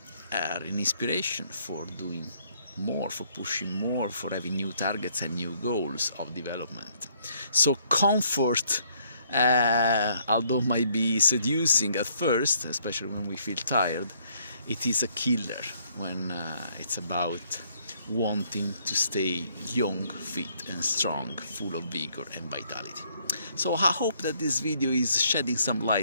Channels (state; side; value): inverted; both; correlation -0.67